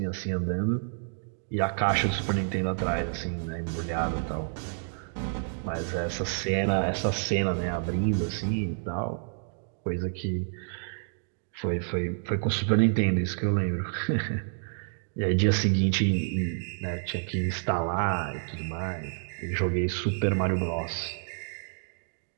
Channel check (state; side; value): silent; left; digital silence